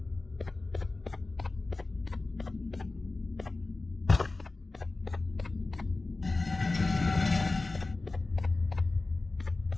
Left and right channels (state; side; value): quieter; right; 3.3 dB